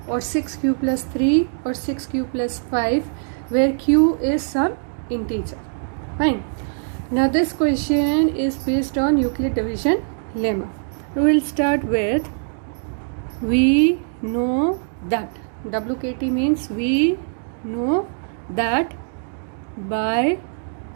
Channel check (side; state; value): left; silent; digital silence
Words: or 6q plus 3 or 6q plus 5 where q is some integer. Fine. Now this question is based on Euclid division lemma. We will start with we know that. WKT means we know that by